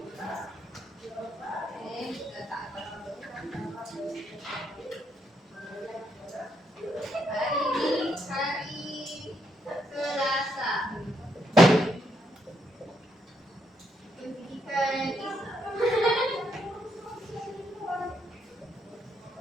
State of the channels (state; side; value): normal; both; correlation 0.77